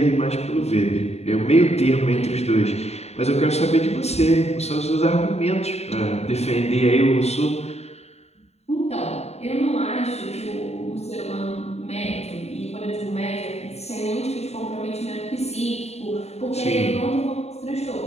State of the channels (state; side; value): late; right; 0.31 ms